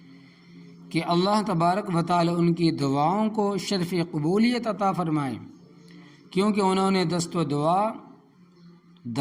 کہ اللہ تبارک و تعالی ان کی دعاؤں کو شرف قبولیت عطا فرمائے، کیونکہ انہوں نے دست و دعا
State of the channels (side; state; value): both; identical; correlation 1.00